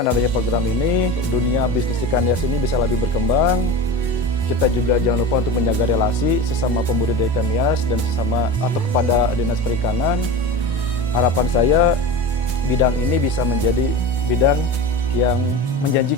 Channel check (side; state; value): both; normal; correlation 0.29